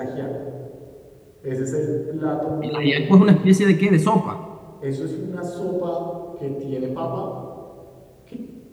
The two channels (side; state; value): both; identical; correlation 1.00